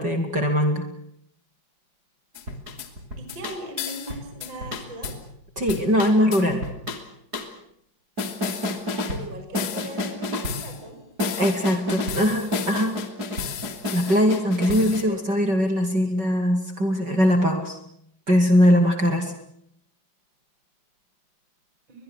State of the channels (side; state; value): left; late; 4.9 ms